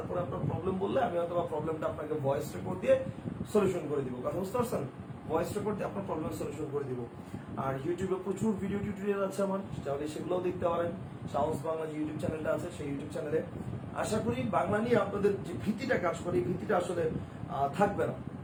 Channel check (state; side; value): identical; both; correlation 1.00